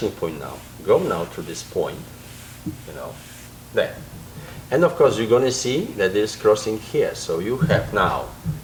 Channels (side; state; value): both; identical; correlation 1.00